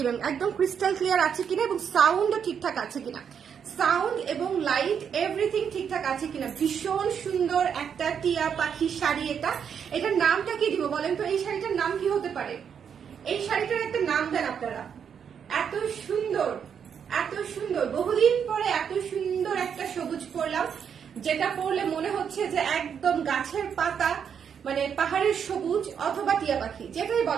একদম ক্রিস্টাল ক্লিয়ার আছে কিনা এবং সাউন্ডও ঠিকঠাক আছে কিনা, সাউন্ড এবং লাইট এভরিথিং ঠিকঠাক আছে কিনা। ভীষণ সুন্দর একটা টিয়া পাখি শাড়ি। এটার নামটা কি দিব বলেন তো? এই শাড়িটার নাম কি হতে পারে? এই শাড়িটার একটা নাম দেন আপনারা। এত সুন্দর, এত সুন্দর, বহুদিন পরে এত সুন্দর একটা সবুজ পরলাম, যেটা পরলে মনে হচ্ছে যে একদম গাছের পাতা, মানে পাহাড়ের সবুজ অথবা টিয়া পাখি, যেটাই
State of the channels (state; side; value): quieter; left; 7.6 dB